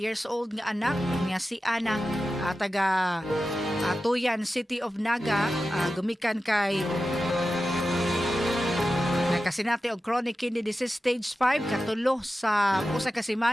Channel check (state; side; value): normal; both; correlation 0.93